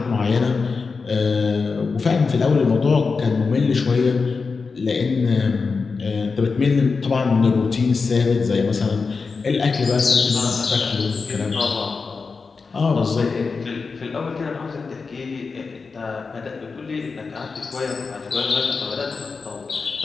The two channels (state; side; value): quieter; right; 4.7 dB